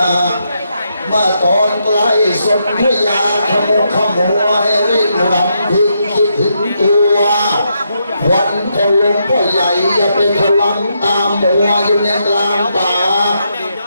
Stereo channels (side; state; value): both; inverted; correlation -0.80